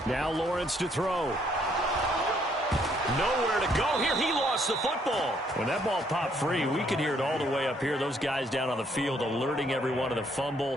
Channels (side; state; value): both; normal; correlation 0.68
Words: Now Lawrence to throw. Nowhere to go here. He lost the football. When that ball popped free, we could hear it all the way up here. Those guys down on the field alerting everyone of the